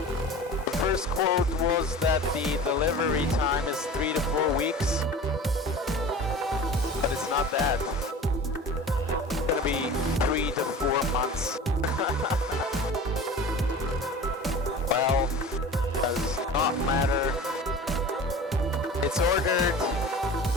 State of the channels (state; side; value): normal; both; correlation 0.38